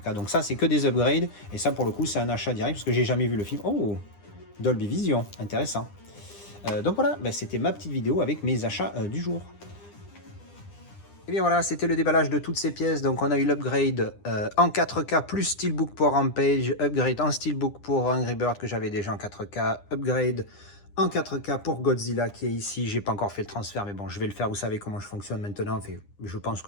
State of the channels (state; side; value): late; right; 9.9 ms